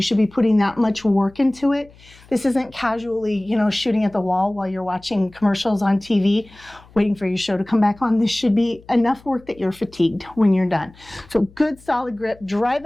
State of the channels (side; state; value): left; noise; hum, 25 dB below the sound